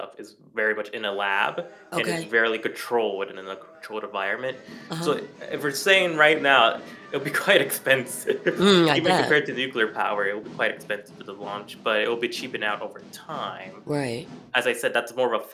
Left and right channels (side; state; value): both; identical; correlation 1.00